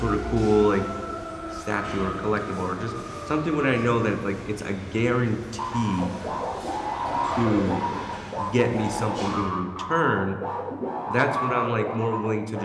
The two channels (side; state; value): both; identical; correlation 1.00